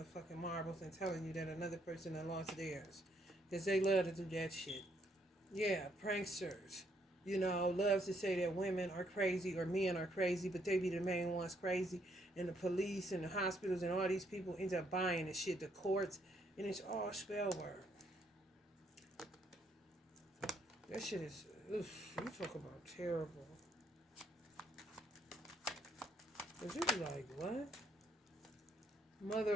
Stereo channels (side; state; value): both; normal; correlation 0.71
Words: marbles and telling you that another person had lost theirs. Because they love to do that shit. Yeah, pranksters. You know, loves to say that women are crazy or men are crazy, but they be the main ones crazy. And the police and the hospitals and all these people end up buying the shit, the courts, and it's all spell work. That shit is, oof, you talk about terrible. But you be like, what?